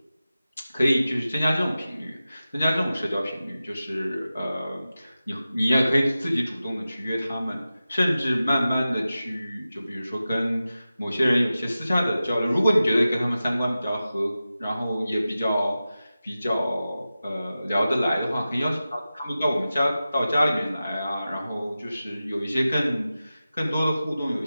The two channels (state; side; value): inverted; both; correlation -0.94